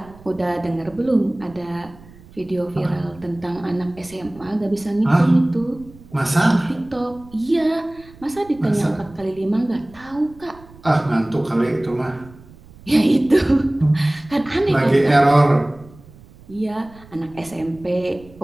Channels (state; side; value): noise; right; rumble, 23 dB below the sound